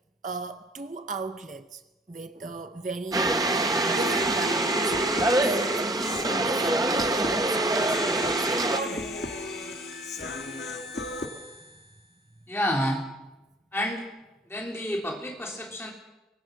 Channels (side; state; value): both; normal; correlation 0.52